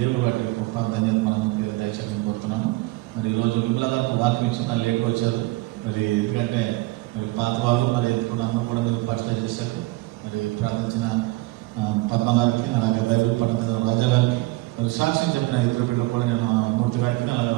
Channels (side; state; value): left; quieter; 21.3 dB